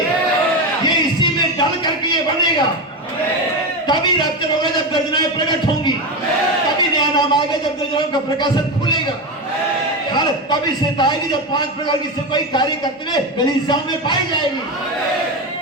ये इसी में डाल करके ये बनेगा। तभी रैप्चर होगा जब गर्जनाएं प्रकट होंगी, तभी नया नाम आएगा जब गर्जनाओं का प्रकाशन खुलेगा, तभी सेता आएगी जब 5 प्रकार की सेवकाई कार्य करते हुए कलीसियाओं में पाई जाएगी।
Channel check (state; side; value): normal; both; correlation 0.16